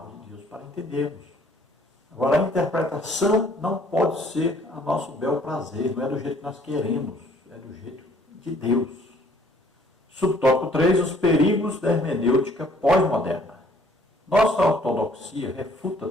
de Deus para entendermos. Agora, a interpretação não pode ser a nosso bel prazer, não é do jeito que nós queremos, é do jeito de Deus. Subtópico 3, os perigos da hermenêutica pós-moderna. Nossa ortodoxia refuta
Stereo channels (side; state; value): both; normal; correlation 0.60